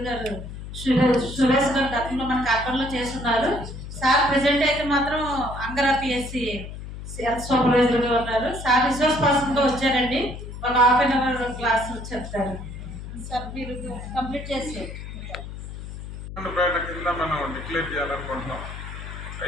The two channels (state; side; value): noise; left; hum, 10 dB below the sound